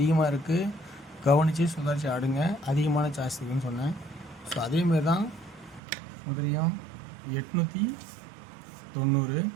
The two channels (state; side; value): drops out; left; at 5.8 s